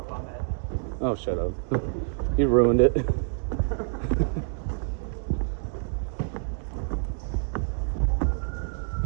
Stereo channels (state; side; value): silent; left; 60 dB below the other